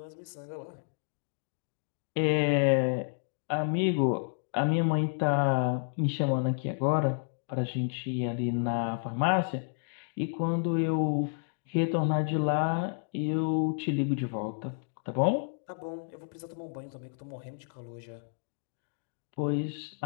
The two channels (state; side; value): silent; right; digital silence